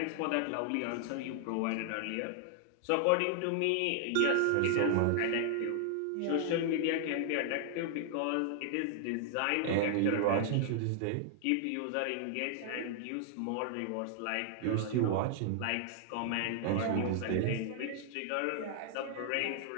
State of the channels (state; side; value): different; both; correlation -0.01